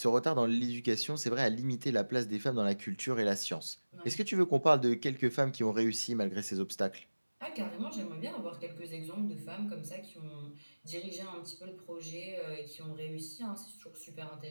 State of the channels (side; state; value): both; inverted; correlation -1.00